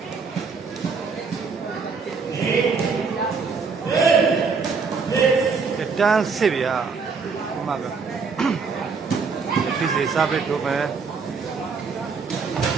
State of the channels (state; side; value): quieter; left; 5.1 dB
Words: တန်းစစ်ဗျာဒီမှာကဖြစ်စေစားပဲထုတ်မယ်